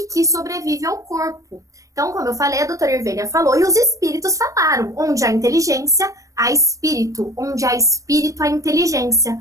que sobrevive ao corpo. Então, como eu falei, a doutora Irvênia falou e os espíritos falaram. Onde há inteligência, há espírito. Onde há espírito, há inteligência.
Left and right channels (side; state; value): left; late; 0.16 ms